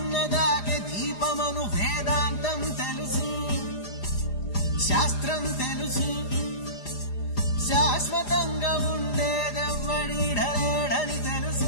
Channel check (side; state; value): right; late; 4.9 ms